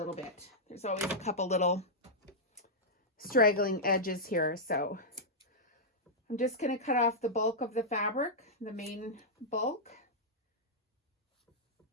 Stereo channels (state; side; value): normal; both; correlation -0.08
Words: bit. There's always a couple little straggling edges here, so I'm just going to cut off the bulk of the fabric, the main bulk.